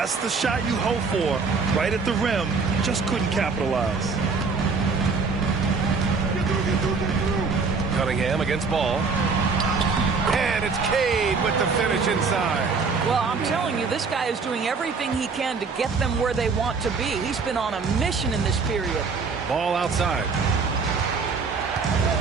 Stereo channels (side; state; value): left; quieter; 4.7 dB